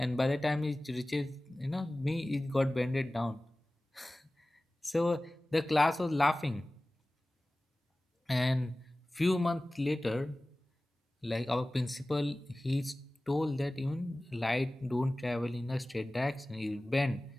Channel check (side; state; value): both; normal; correlation 0.97